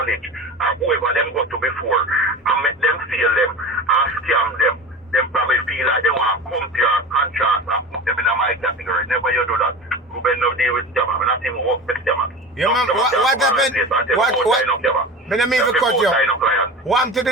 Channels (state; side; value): normal; both; correlation 0.31